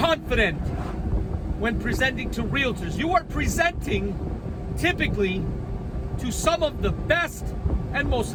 when presenting to realtors. You are presenting typically to some of the best and most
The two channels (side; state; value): both; identical; correlation 1.00